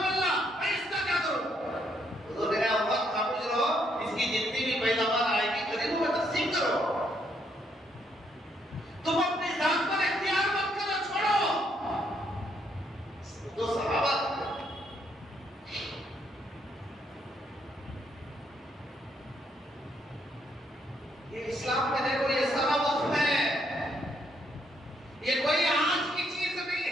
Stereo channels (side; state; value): both; normal; correlation 0.73